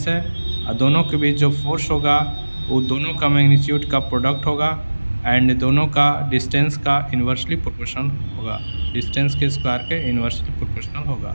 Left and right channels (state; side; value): inverted; both; correlation -1.00